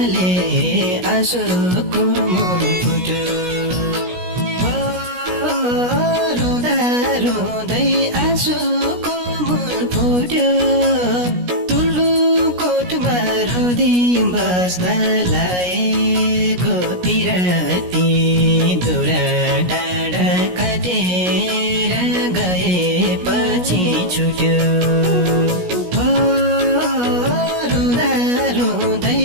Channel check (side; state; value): left; late; 17 ms